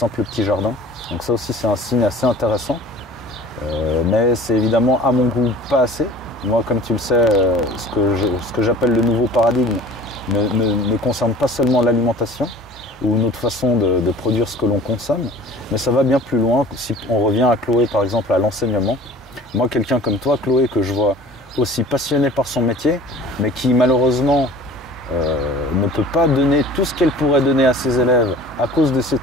petits jardins. Donc ça aussi c'est un signe assez intéressant. Mais c'est évidemment à mon goût pas assez. Moi, comme tu le sais, ce que j'appelle le nouveau paradigme ne concerne pas seulement l'alimentation ou notre façon de produire ce que l'on consomme, mais ça va bien plus loin. Si on revient à Chloé par exemple, à l'enseignement, moi quelqu'un comme toi Chloé, que je vois aussi passionné par son métier, mais qui malheureusement ne peut pas donner tout ce qu'elle pourrait donner à ses élèves à cause de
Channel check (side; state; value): both; normal; correlation 0.45